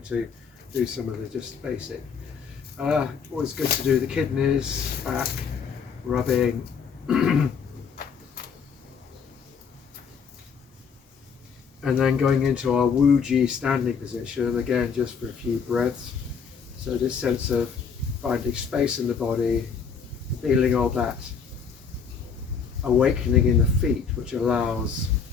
to do some of the just basic. Always good to do the kidneys, back, rubbing. And then going into our Wuji standing position, again just for a few breaths. So this sense of finding space in the body, feeling all that awakening in the feet, which allows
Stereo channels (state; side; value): quieter; right; 6.3 dB